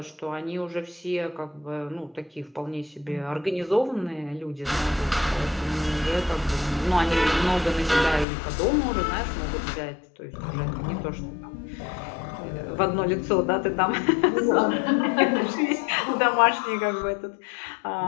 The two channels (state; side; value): drops out; right; at 8.2 s